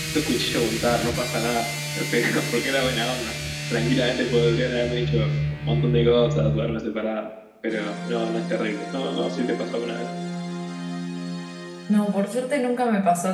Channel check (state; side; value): identical; both; correlation 1.00